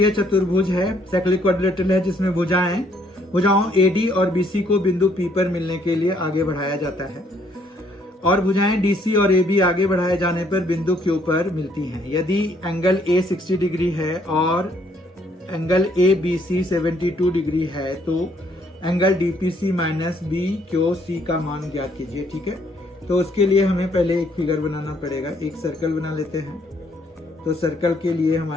चतुर्भुज है, साइक्लिक क्वाड्रिलेटरल है, जिसमें भुजाओं AD और BC को बिंदु P पर मिलने के लिए आगे बढ़ाया जाता है और भुजाएं DC और AB आगे बढ़ाए जाने पर बिंदु Q पर मिलती हैं। यदि एंगल A 60 डिग्री है और एंगल ABC 72 डिग्री है तो एंगल DPC माइनस BQC का मान ज्ञात कीजिए। ठीक है, तो उसके लिए हमें पहले एक फिगर बनाना पड़ेगा। एक सर्कल बना लेते हैं, तो सर्कल के लिए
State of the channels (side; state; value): both; normal; correlation 0.67